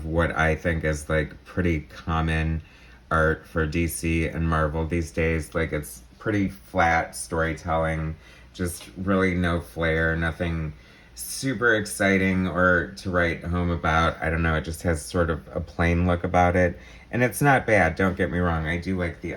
what I think is, pretty common art for DC and Marvel these days. It's pretty flat storytelling, just really no flair, nothing super exciting or to write home about. I don't know, it just has sort of a plain look about it. And it's not bad, don't get me wrong. I do like the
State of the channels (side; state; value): both; identical; correlation 1.00